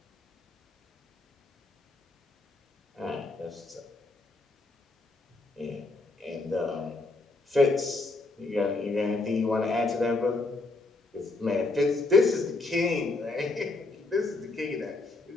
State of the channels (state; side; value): quieter; right; 3.3 dB